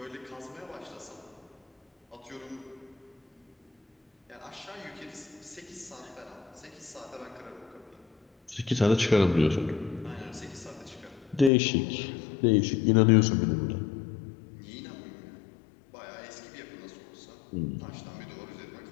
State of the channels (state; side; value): drops out; right; at 11.5 s